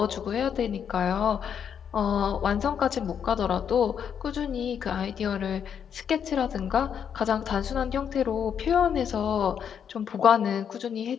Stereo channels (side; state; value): right; quieter; 8.0 dB